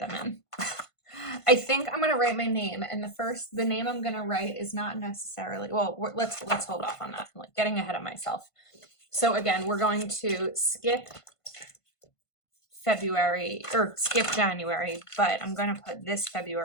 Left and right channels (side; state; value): right; late; 1.5 ms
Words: in. I think I'm going to write my name, and the name I'm going to write is not necessarily, well, let's hold off on that. I'm like getting ahead of myself. So again, we're going to skip February or skip January, but I'm going to put this